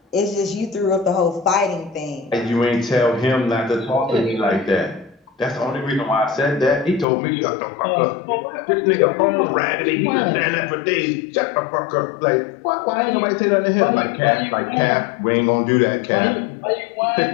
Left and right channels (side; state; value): right; drops out; at 7.1 s